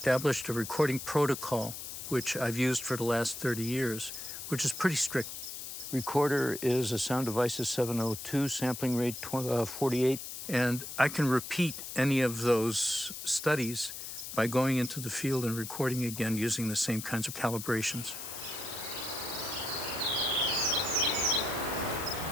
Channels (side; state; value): left; noise; hiss, 8 dB below the sound